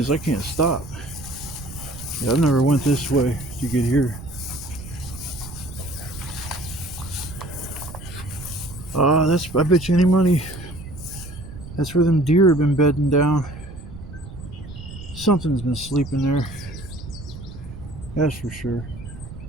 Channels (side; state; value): right; noise; rumble, 13 dB below the sound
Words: I can't stop. Yeah, I've never went this way to get here. I bet you any money that's where them deer have been bedding down. Something's been sleeping there. That's for sure.